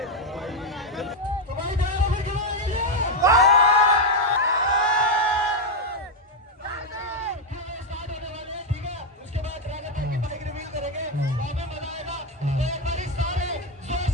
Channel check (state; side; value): normal; both; correlation 0.04